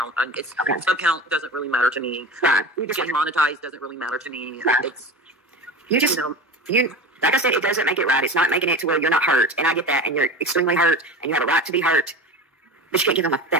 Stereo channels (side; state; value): both; normal; correlation 0.30